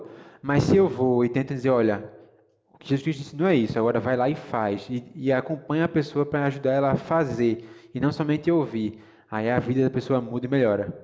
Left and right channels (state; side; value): identical; both; correlation 1.00